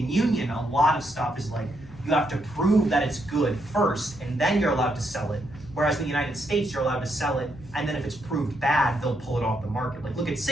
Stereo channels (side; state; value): left; noise; hum, 19 dB below the sound